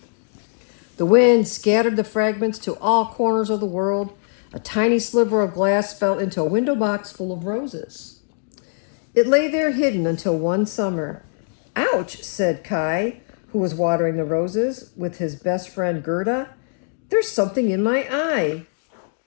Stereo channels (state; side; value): silent; right; digital silence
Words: The wind scattered the fragments to all corners of the world. A tiny sliver of glass fell into a window box full of roses. It lay there hidden until one summer. "Ouch," said Kai, who was watering the roses with his best friend Gerda. "There's something in my eye."